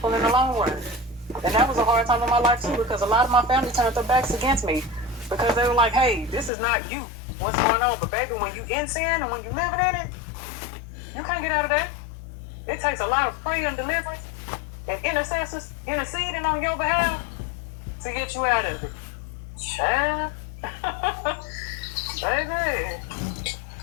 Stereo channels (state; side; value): drops out; right; at 6.5 s